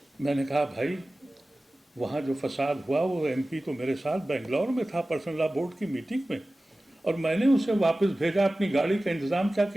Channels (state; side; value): normal; both; correlation 0.96